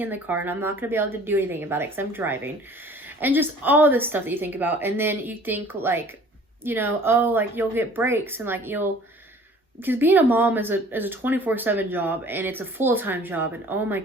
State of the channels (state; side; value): normal; both; correlation 0.50